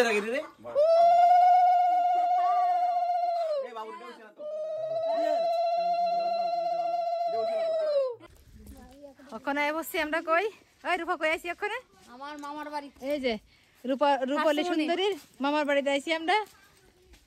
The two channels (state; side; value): identical; both; correlation 1.00